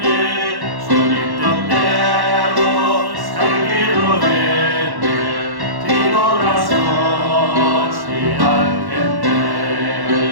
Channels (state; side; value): late; left; 1.1 ms